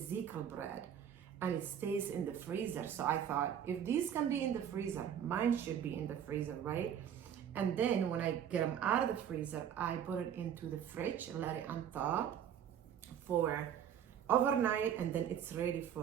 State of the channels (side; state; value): left; quieter; 9.1 dB